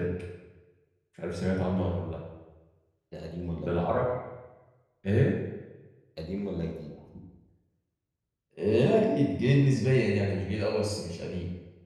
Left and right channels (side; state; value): both; identical; correlation 1.00